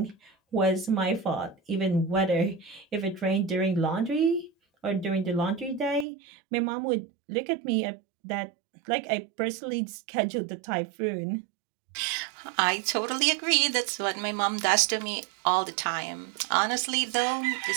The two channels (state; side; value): drops out; left; at 6.1 s